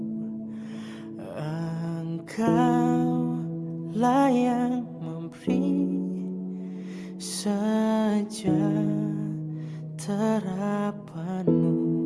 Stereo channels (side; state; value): both; identical; correlation 1.00